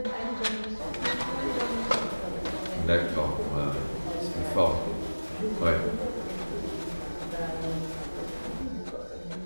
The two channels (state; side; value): inverted; both; correlation -1.00